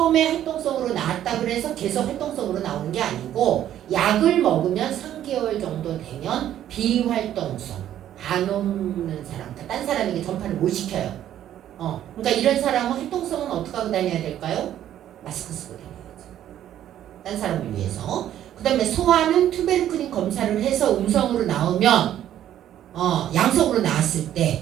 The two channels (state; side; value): quieter; left; 11.5 dB